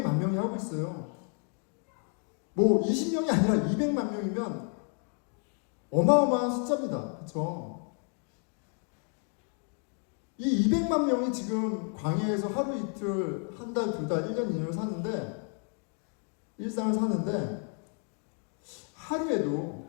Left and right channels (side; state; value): right; quieter; 40.0 dB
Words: 명이 하고 있어요. 뭐 20명이 아니라 200만 명이면 어마어마한 숫자입니다. 그렇죠? 이 200만 명이 지금 광야에서 하루 이틀, 한 달, 두 달, 1년, 2년을 사는데 일상을 사는데 하루에도